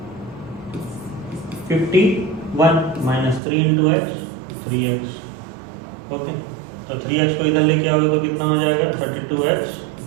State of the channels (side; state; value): left; drops out; at 3.4 s